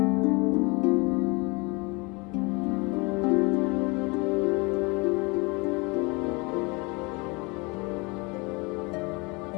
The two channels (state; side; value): quieter; right; 27.8 dB